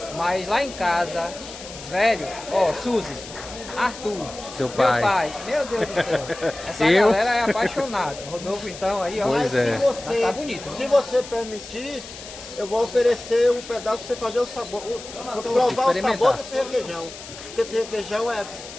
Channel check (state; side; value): noise; left; hiss, 14 dB below the sound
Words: Mas lá em casa, velho, ó, Suzy, Arthur, Seu meu pai. meu Deus do céu. Essa Eu? galera é apaixonada. Rodolfo, então, aí, ó. Pois é. Se você, Tá bonito. se você permitir, eu vou oferecer um pedaço pra você fazer o sabor, provar o Experimentar. sabor desse requeijão. Porque esse requeijão